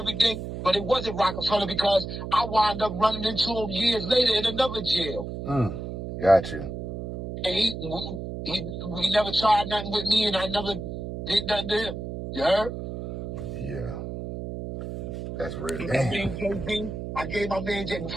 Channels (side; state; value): right; noise; hum, 7 dB below the sound